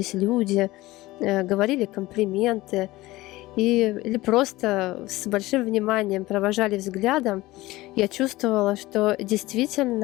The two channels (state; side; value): quieter; right; 18.8 dB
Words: люди, говорили комплименты или просто с большим вниманием провожали взглядом, я чувствовала, что